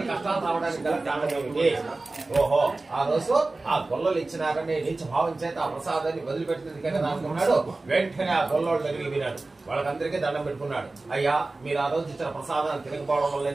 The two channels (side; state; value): left; quieter; 3.3 dB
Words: కష్టాలు రావడానికి గల కారణం ఏమిటి? ఓహో, ఆ రోజు ఆ గొల్లలు ఇచ్చినారని నీచ భావం చేత ఆ ప్రసాదాన్ని వదిలిపెట్టింది కదా అనుకున్నాడు. వెంటనే ఆ గొల్లోళ్ళ దగ్గరికి వినాడు, వాళ్ళకందరికీ దండం పెట్టుకున్నాడు. అయ్యా, మీరు ఆ రోజు ఇచ్చిన ప్రసాదాన్ని తిరగపోవడం వల్ల